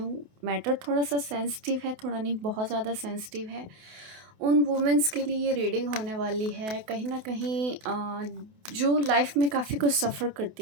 मैटर थोड़ा सा सेंसिटिव है, थोड़ा नहीं बहुत ज़्यादा सेंसिटिव है। उन वुमेंस के लिए ये रीडिंग होने वाली है कहीं ना कहीं जो लाइफ में काफ़ी कुछ सफ़र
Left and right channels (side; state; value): left; late; 28 ms